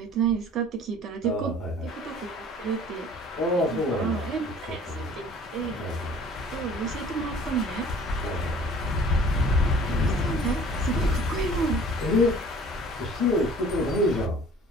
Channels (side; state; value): both; normal; correlation 0.50